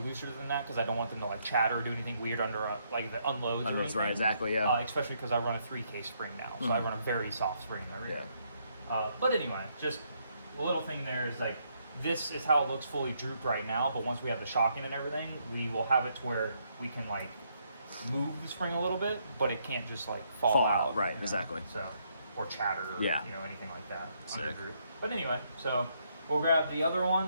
looser than that because I don't want them to like chatter or do anything weird under like the unloads or anything. Right, exactly, yeah. Especially because I run a 3K spring now, so I run a very soft spring in the rear. But anyway, just a little thing there is like, this is how it looks fully drooped right now, but once we have the shocking and everything, we will have it to where we can like move the spring a little bit, but it can't just like fall out. Right, you know? exactly. So, or chatter, or, Yeah. you know, anything like that. Sick. Under droop. But anyway, so we'll grab the other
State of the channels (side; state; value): both; inverted; correlation -0.74